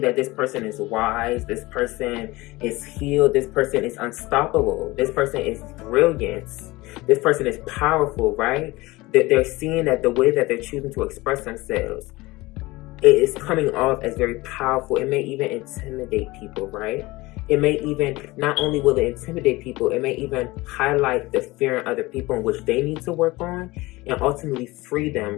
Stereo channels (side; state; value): right; quieter; 20.9 dB